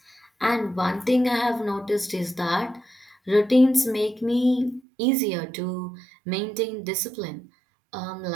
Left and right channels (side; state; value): left; drops out; at 4.8 s